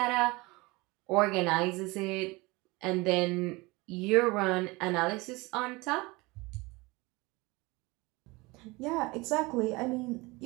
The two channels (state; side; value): quieter; left; 23.7 dB